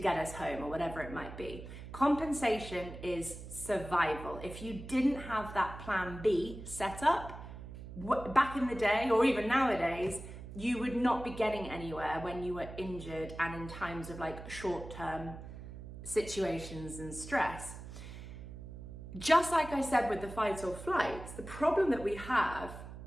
us home, or whatever it might be. Compensation is survival. If you didn't have that plan B set up, back in the day, or even nowadays, you would not be getting anywhere when you were injured and in times of like short-term situations and stress. Just like I said with the fight or flight, the problem that we have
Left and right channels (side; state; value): right; noise; hum, 12 dB below the sound